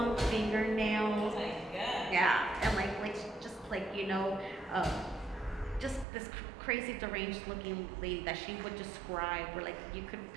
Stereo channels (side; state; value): left; drops out; at 6.1 s